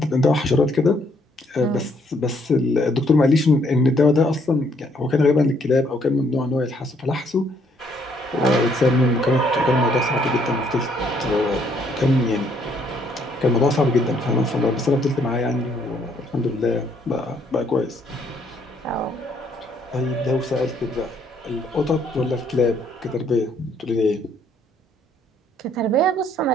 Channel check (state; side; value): normal; both; correlation 0.68